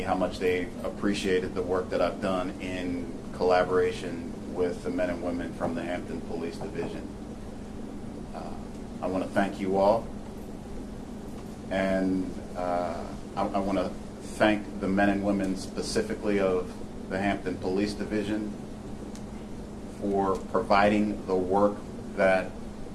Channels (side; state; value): both; identical; correlation 1.00